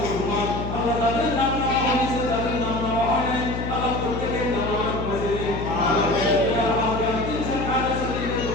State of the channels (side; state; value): left; noise; hum, 5 dB below the sound